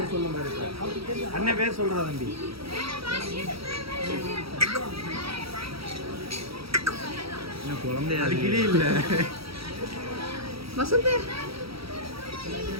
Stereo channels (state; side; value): late; left; 0.76 ms